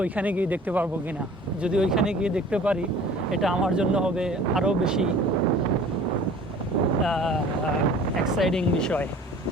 ওইখানে গিয়ে দেখতে পারবো কিনা। যদি ওইখানে গিয়ে দেখতে পারি, এটা আমার জন্য হবে আরও বেশি এক্সাইটিং বিষয়।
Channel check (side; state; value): both; normal; correlation 0.47